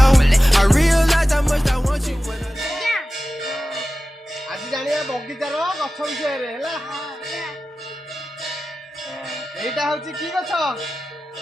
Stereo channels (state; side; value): normal; both; correlation 0.95